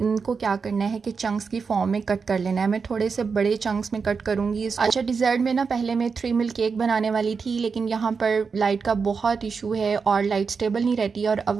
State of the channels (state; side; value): quieter; left; 5.3 dB